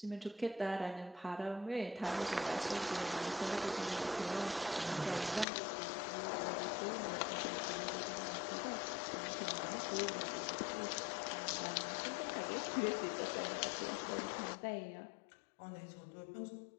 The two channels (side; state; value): right; drops out; at 5.5 s